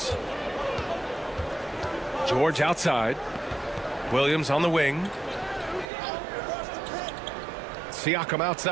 George outside. Williams on the wing. Siakam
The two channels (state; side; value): drops out; left; at 5.9 s